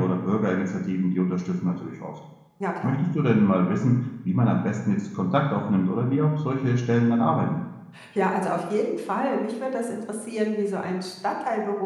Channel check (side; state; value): both; identical; correlation 1.00